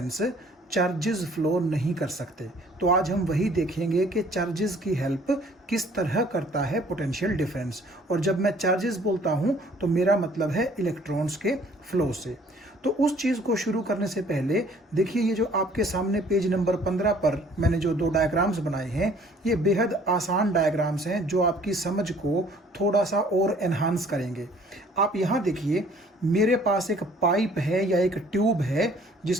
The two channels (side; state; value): both; normal; correlation 0.56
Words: चार्जेस फ्लो नहीं कर सकते। तो आज हम वही देखेंगे कि चार्जेस की हेल्प किस तरह करता है पोटेंशियल डिफरेंस। और जब मैं चार्जेस बोलता हूं तो मेरा मतलब है इलेक्ट्रॉन्स के फ्लो से। तो उस चीज़ को शुरू करने से पहले देखिए, ये जो आपके सामने पेज नंबर 15 पर मैंने जो दो डायग्राम्स बनाए हैं, ये बेहद आसान डायग्राम्स हैं जो आपकी समझ को थोड़ा सा और एनहांस करेंगे। आप यहाँ देखिए, मेरे पास एक पाइप है या एक ट्यूब है